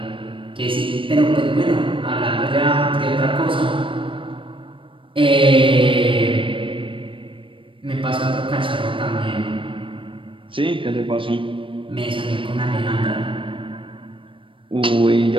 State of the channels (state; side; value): late; left; 0.25 ms